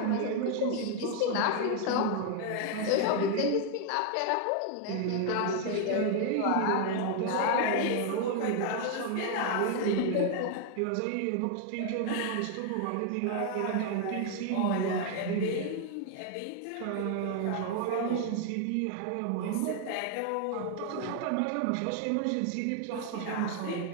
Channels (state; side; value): different; both; correlation 0.00